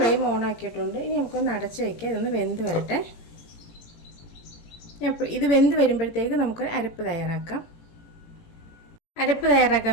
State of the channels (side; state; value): right; late; 18 ms